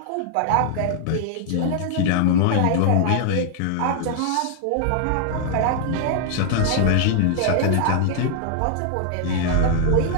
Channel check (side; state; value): both; different; correlation 0.00